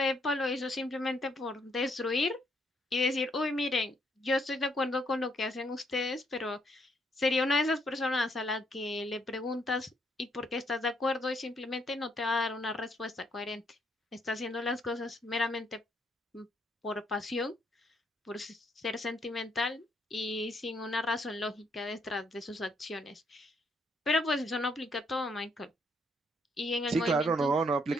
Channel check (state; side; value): normal; both; correlation 0.72